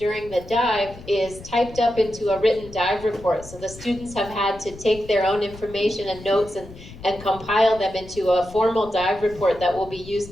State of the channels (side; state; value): left; noise; rumble, 17 dB below the sound